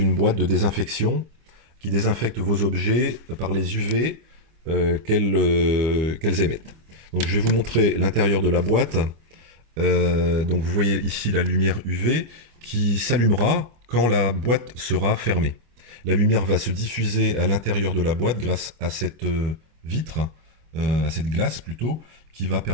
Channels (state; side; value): late; left; 25 ms